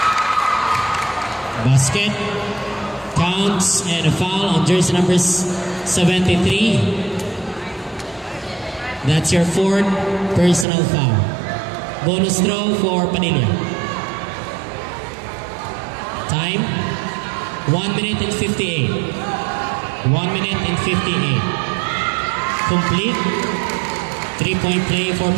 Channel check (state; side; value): drops out; left; at 10.7 s